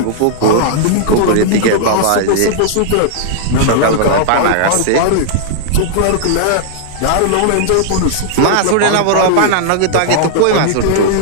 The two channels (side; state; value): both; different; correlation -0.01